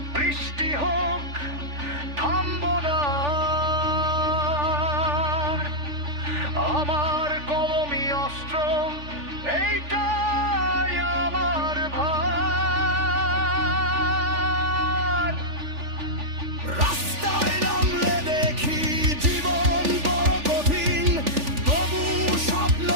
বৃষ্টি হোক, থামবো না। আমার কলমি অস্ত্র, এইটাই আমার ভার। রাস্তায় নামলে দেখি জীবন বড় কঠিন, তবু স্বপ্ন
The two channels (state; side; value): late; left; 3.4 ms